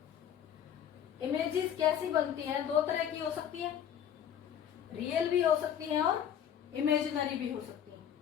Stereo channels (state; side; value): quieter; right; 9.3 dB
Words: इमेजेस कैसी बनती हैं? 2 तरह की हो सकती है, रियल भी हो सकती हैं और इमेजिनरी भी हो सकती हैं।